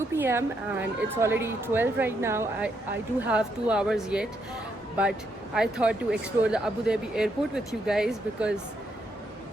p.m. and it's already 12 right now. I do have 2 hours yet, but I thought to explore the Abu Dhabi airport with you guys because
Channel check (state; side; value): normal; both; correlation 0.77